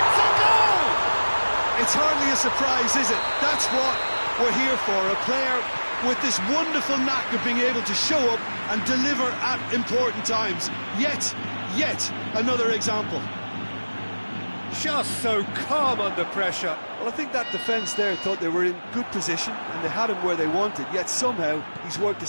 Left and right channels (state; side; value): inverted; both; correlation -1.00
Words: a goal! It's hardly a surprise, is it? That's what we're here for, a player with this wonderful knack of being able to show up and deliver at important times. Yet another example. Just so calm under pressure. Well, I think that defence there thought they were in good position and they had him where they wanted, yet somehow he's worked a